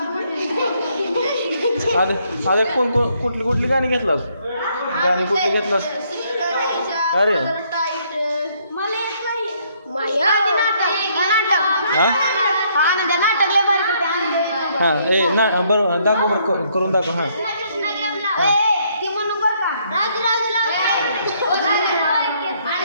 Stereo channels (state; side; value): inverted; both; correlation -0.69